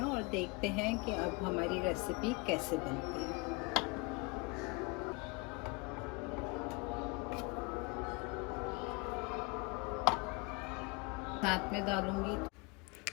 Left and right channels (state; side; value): quieter; right; 27.4 dB